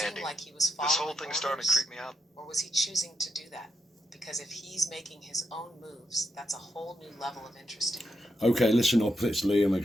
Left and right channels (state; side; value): normal; both; correlation 0.83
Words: seem like he was following This whole thing's starting to orders? creep me out. Or was he choosing to do that? Because if he's making his own moves, that's a whole new level of interesting. Okay, listen up. It's Liam